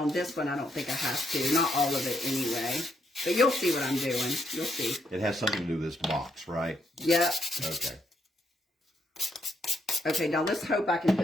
this one, I don't think I have to. Not all of it anyway. But you'll see what I'm doing. You'll see. It has something to do with this box, right? Yep. Okay. Okay, now let's hope I can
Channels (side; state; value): both; normal; correlation 0.77